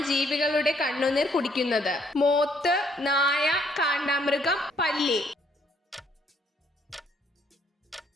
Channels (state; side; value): normal; both; correlation 0.67